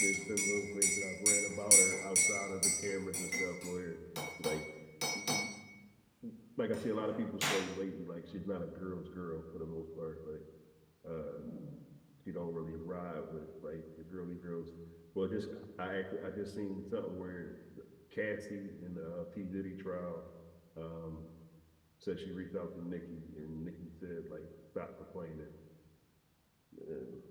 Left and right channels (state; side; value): identical; both; correlation 1.00